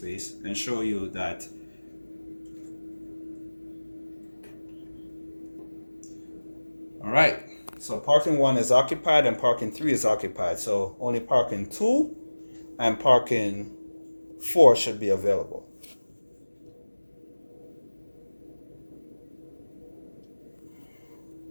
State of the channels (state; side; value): inverted; both; correlation -1.00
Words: and show you that. All right. So parking 1 is occupied and parking 3 is occupied. So only parking 2 and parking 4 should be available.